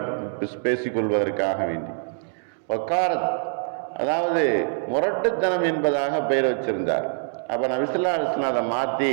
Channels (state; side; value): silent; left; digital silence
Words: பேசிக்கொள்வதற்காக வேண்டி வக்காரத், அதாவது முரட்டுத்தனம் என்பதாக பெயர் வச்சிருந்தார். அப்போ நபி ஸல்லல்லாஹு அலைஹி வஸல்லம் அதை மாற்றி